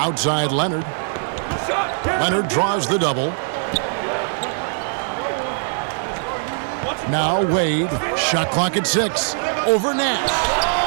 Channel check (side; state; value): left; silent; digital silence